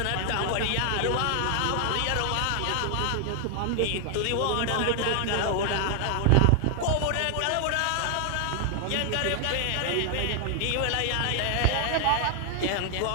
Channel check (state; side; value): different; both; correlation 0.00